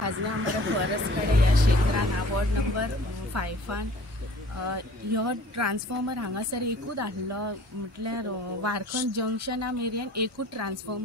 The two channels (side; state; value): both; normal; correlation 0.49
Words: आमच्या फॉरेस्ट कडेन ह्या क्षेत्रान वॉर्ड नंबर 5 ह्यो ट्रान्सफॉर्मर हांगासर एकूच आसलो म्हटल्यार वारखंड जंक्शना मेरेन एकूच